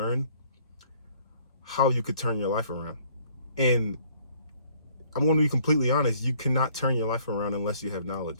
how you could turn your life around. And I'm going to be completely honest, you cannot turn your life around unless you have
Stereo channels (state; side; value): inverted; both; correlation -0.60